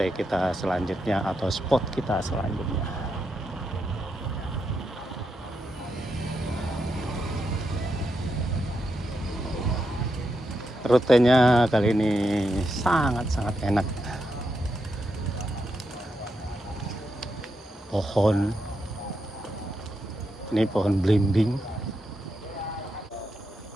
kita selanjutnya atau spot kita selanjutnya. Rutenya kali ini sangat-sangat enak. Pohon, ini pohon belimbing.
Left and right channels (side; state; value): both; normal; correlation 0.84